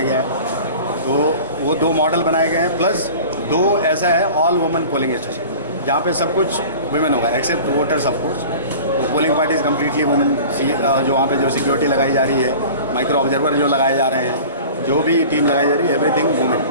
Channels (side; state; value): both; inverted; correlation -0.40